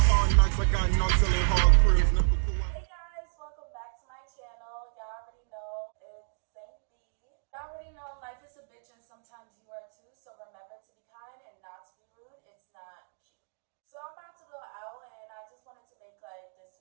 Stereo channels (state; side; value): silent; left; digital silence